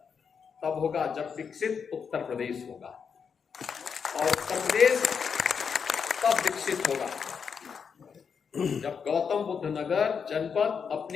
तब होगा जब विकसित उत्तर प्रदेश होगा, और उत्तर प्रदेश तब विकसित होगा जब गौतम बुद्ध नगर जनपद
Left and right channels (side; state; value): right; quieter; 6.4 dB